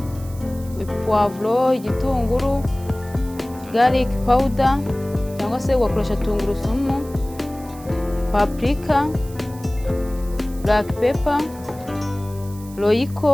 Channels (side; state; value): right; noise; hiss, 21 dB below the sound